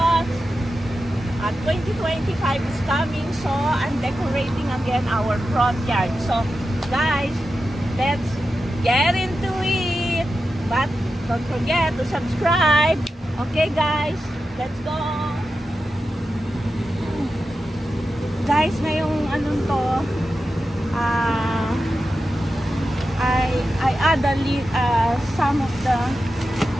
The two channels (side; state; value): both; normal; correlation 0.91